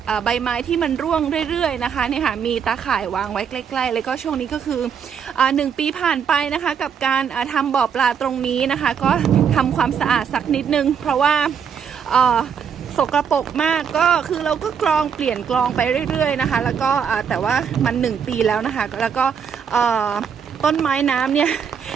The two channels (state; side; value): quieter; left; 7.2 dB